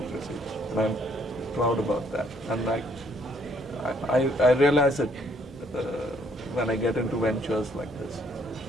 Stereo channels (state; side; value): normal; both; correlation 0.66